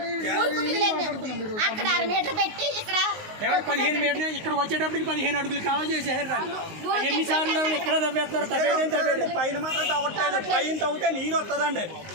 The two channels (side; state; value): left; late; 19 ms